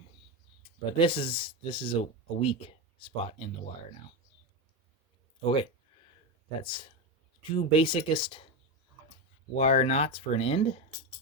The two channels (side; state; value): both; normal; correlation 0.14